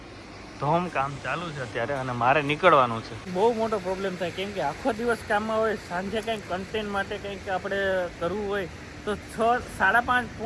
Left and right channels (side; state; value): both; identical; correlation 1.00